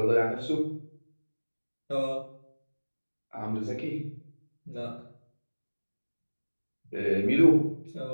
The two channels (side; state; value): both; inverted; correlation -1.00